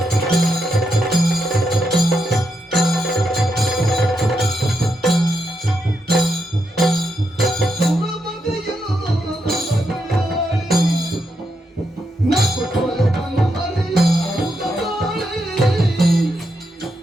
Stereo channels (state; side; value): normal; both; correlation 0.82